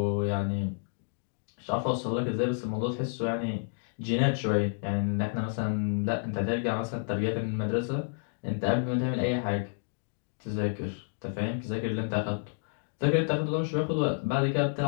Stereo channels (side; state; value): right; silent; digital silence